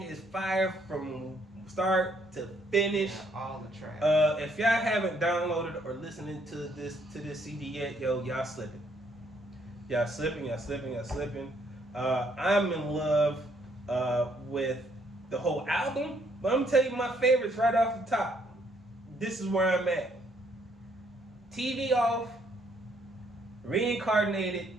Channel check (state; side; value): normal; both; correlation 0.69